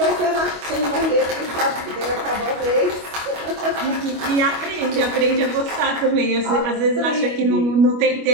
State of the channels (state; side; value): late; left; 25 ms